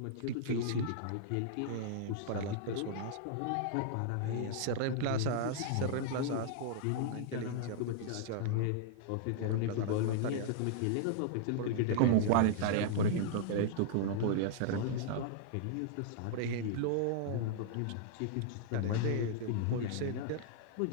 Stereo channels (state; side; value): different; both; correlation -0.01